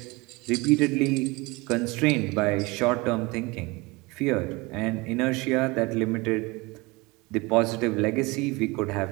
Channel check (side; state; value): left; quieter; 24.5 dB